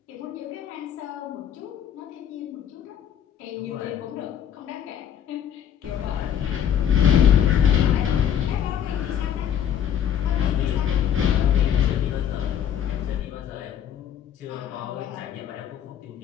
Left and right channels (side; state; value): right; quieter; 9.4 dB